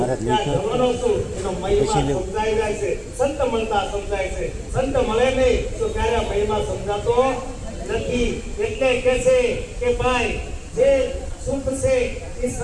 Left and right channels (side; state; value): both; identical; correlation 1.00